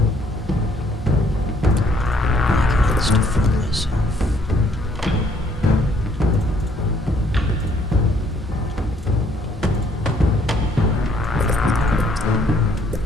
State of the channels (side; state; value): both; normal; correlation 0.65